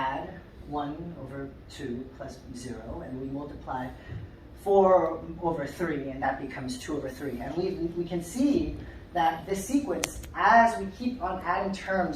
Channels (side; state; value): both; identical; correlation 1.00